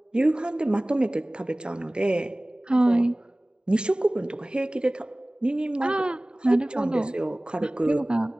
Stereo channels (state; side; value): late; left; 0.049 ms